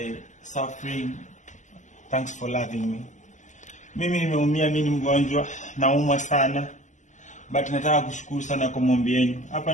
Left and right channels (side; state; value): right; late; 0.35 ms